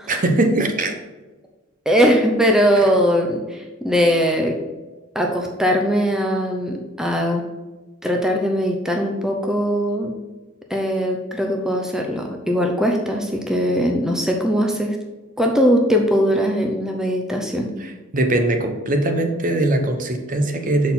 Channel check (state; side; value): normal; both; correlation 0.59